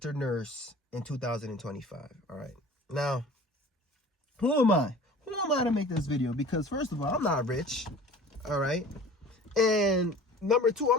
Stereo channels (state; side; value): normal; both; correlation 0.43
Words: nurse in 2025. All right. Now, who am I? Who am I to make this video? Because first of all, I'm not rich. All right. And number two,